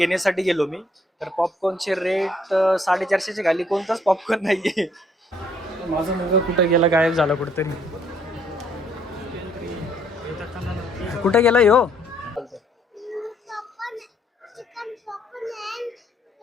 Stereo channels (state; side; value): normal; both; correlation 0.67